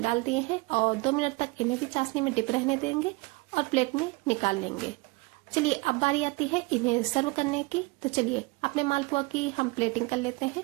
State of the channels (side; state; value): left; quieter; 25.1 dB